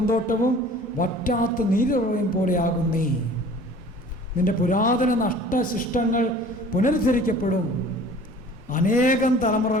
വറ്റാത്ത നീരുറവയും പോലെയാകും നീ. നിന്റെ പുരാതന നഷ്ടശിഷ്ടങ്ങൾ പുനരുദ്ധരിക്കപ്പെടും. അനേകം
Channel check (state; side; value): normal; both; correlation 0.47